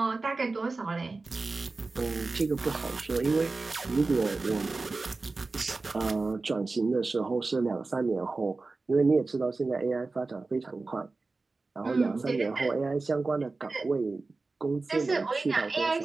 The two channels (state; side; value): quieter; left; 3.7 dB